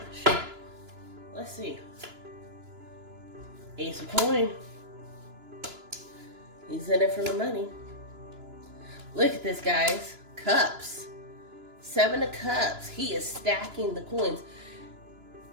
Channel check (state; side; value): late; left; 2.9 ms